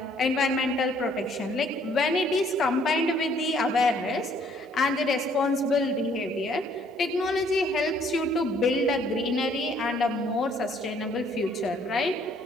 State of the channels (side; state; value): both; normal; correlation 0.63